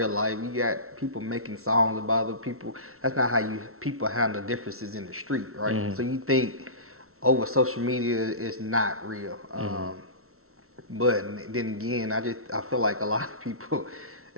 life. You got people making songs about other people. That's not how you people handle differences in the street, right? Mm-hmm. So you think over social media is not real. Mm-hmm. But then again, I feel like a lot of people,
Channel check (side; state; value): left; late; 0.63 ms